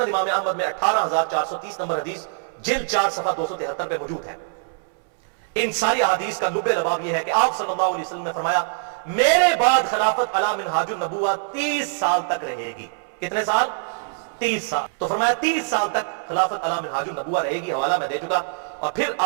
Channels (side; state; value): left; silent; 63 dB below the other